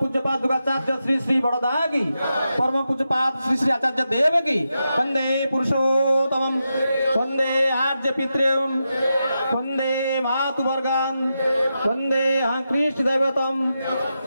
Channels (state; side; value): inverted; both; correlation -0.88